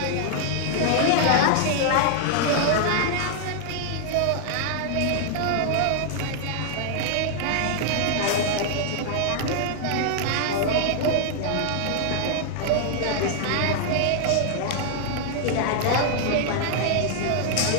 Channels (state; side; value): different; both; correlation 0.00